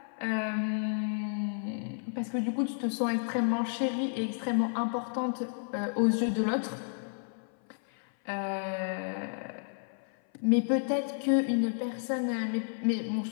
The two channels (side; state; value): right; silent; 56 dB below the other